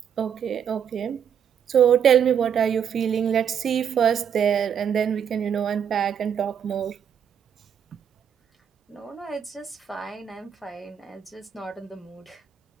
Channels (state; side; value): quieter; left; 8.2 dB